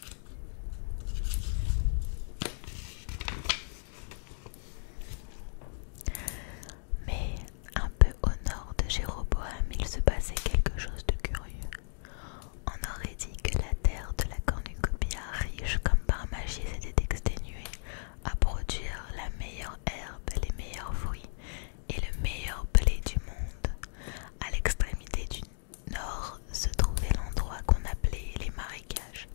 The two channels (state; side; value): silent; right; digital silence